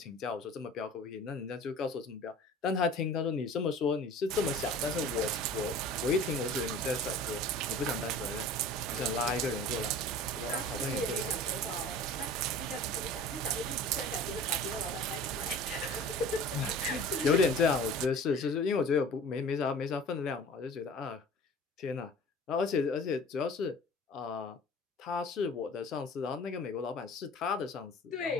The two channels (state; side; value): normal; both; correlation 0.43